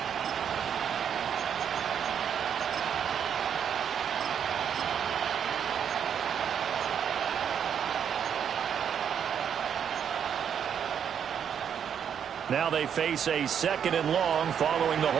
Now they face a 2nd and long following the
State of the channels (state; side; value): quieter; left; 8.2 dB